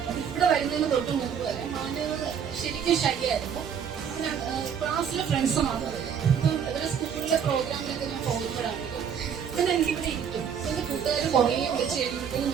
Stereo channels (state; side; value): quieter; left; 7.7 dB